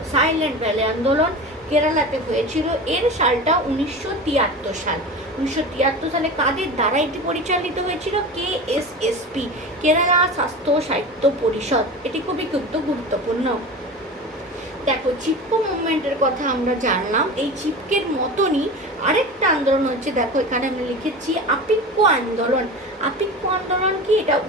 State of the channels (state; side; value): normal; both; correlation 0.30